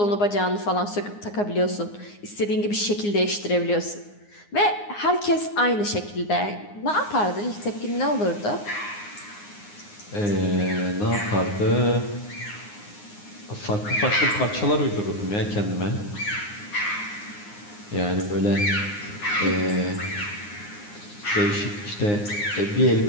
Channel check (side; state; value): right; late; 9.7 ms